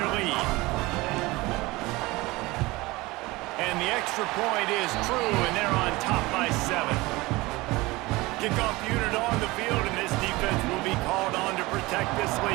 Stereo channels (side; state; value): left; quieter; 21.4 dB